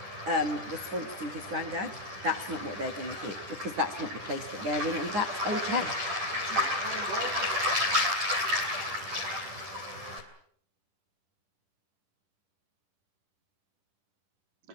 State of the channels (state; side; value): late; left; 10 ms